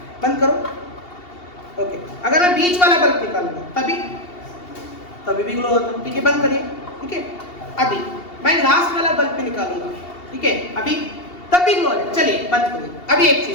बंद करो। ओके, अगर मैं बीच वाला बल्ब निकालूंगा तभी भी ग्लो होता। ठीक है, बंद करिए। ठीक है, अभी मैं लास्ट वाला बल्ब भी निकालूंगा। ठीक है, अभी तब भी ग्लो हो रहा है। चलिए बंद करिए, अभी एक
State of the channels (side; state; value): right; late; 2.7 ms